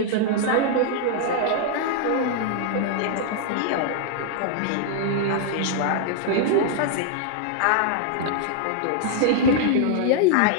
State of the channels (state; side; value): different; both; correlation -0.01